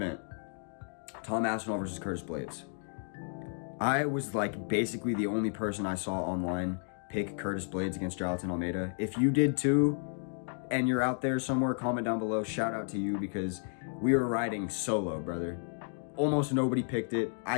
Tom Aspinall versus Curtis Blades. I was like basically the only person I saw online pick Curtis Blades against Jonathan Almeida. If you did too, and you're out there somewhere, comment down below. Shout out to you because we were riding solo, brother. Almost nobody picked it. I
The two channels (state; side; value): silent; right; 56 dB below the other